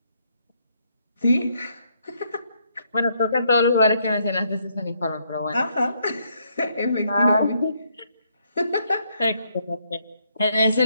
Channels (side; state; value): both; inverted; correlation -0.73